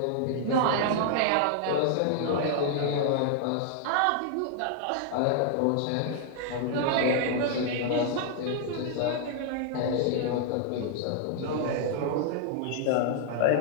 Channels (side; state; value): both; different; correlation 0.00